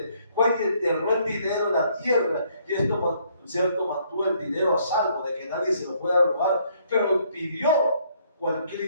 Fue y enterró el dinero en la tierra y esto, cierto, mantuvo el dinero a salvo de que nadie se lo pueda robar, pero pidió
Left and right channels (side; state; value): both; inverted; correlation -0.67